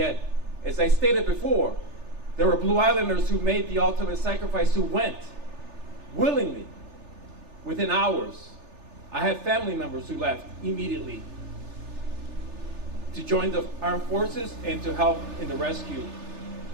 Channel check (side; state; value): left; late; 3.4 ms